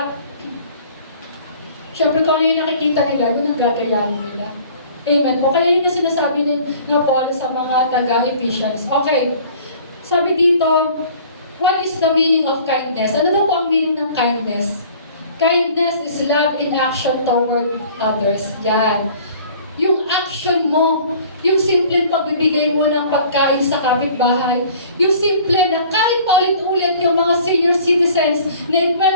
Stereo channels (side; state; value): both; inverted; correlation -0.49